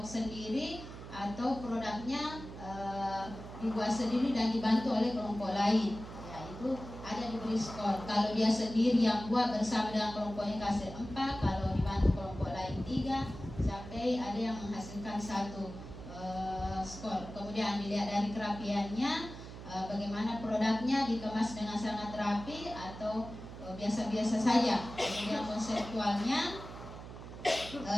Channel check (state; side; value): noise; right; hum, 12 dB below the sound